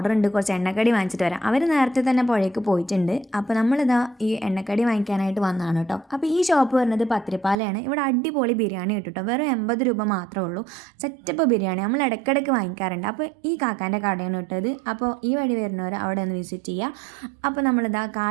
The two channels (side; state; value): left; drops out; at 7.6 s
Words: ഉണ്ട്, കുറച്ച് എണ്ണക്കടി വാങ്ങിച്ചിട്ട് വരാം. അവർ നേരത്തെ തന്നെ പുഴയ്ക്ക് പോയിട്ടുണ്ട്. അപ്പോൾ നമ്മളിതാ ഈ എണ്ണക്കടി വാങ്ങിക്കാനായിട്ട് വന്നതാണ് കേട്ടോ. അപ്പോൾ ഈ ഷോപ്പ് വരുന്നത് പത്തിരിപ്പാലയാണ്. ഇവിടെ അടിപൊളി ബിരിയാണി കിട്ടും കേട്ടോ. വെറും 80 രൂപ മാത്രമേ ഉള്ളൂ. സെറ്റപ്പ് ബിരിയാണി നമ്മൾ ഇടയ്ക്കിടയ്ക്ക് വാങ്ങിക്കാറുണ്ട്. അപ്പോൾ ഈ കാക്കാൻ്റെ കടയാണ് കിട്ടത്. അപ്പോൾ ഈ വഴി വരുന്നവർ അവിടെ ഒന്ന് വിസിറ്റ് ചെയ്യുക. അപ്പോൾ നമ്മളിതാ